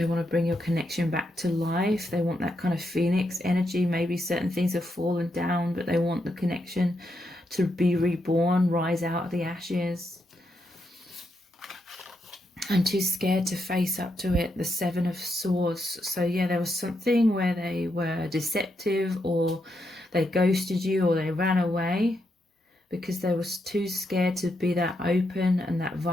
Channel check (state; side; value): normal; both; correlation 0.82